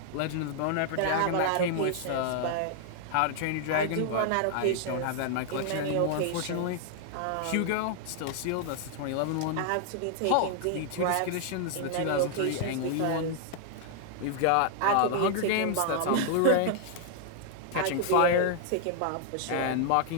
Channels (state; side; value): different; both; correlation -0.01